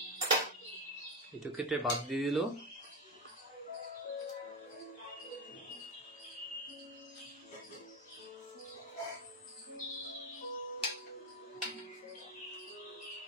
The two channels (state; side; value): normal; both; correlation 0.15